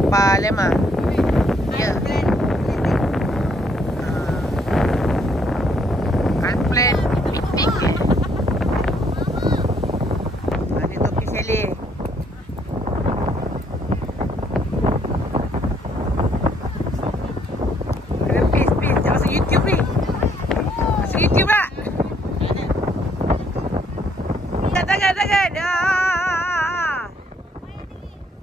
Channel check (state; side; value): normal; both; correlation 0.68